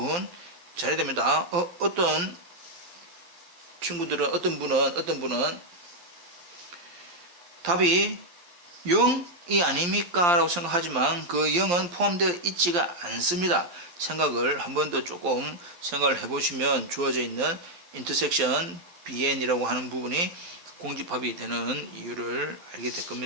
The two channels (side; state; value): left; late; 11 ms